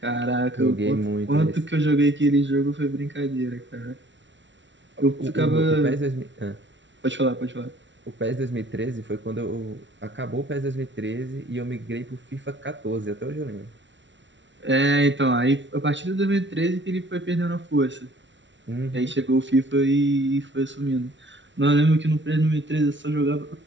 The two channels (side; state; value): left; late; 0.54 ms